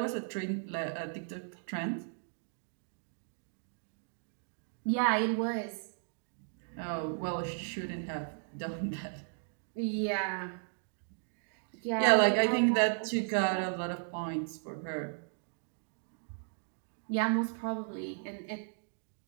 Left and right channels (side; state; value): left; silent; digital silence